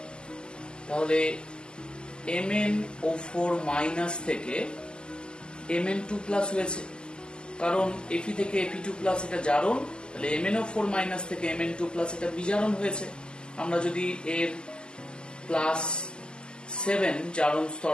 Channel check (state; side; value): late; right; 0.047 ms